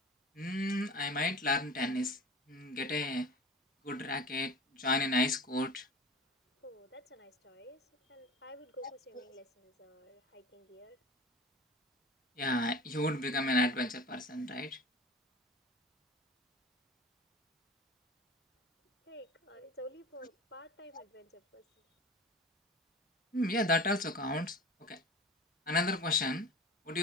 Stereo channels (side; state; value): both; normal; correlation 0.36